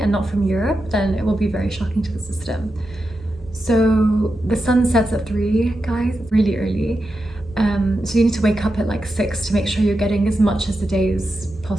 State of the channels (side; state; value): both; normal; correlation 0.89